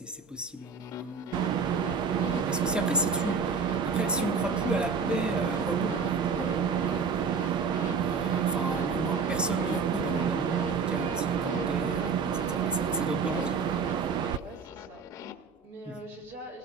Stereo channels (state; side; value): quieter; left; 5.3 dB